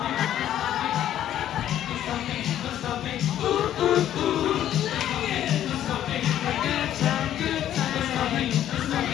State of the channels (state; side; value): quieter; right; 11.4 dB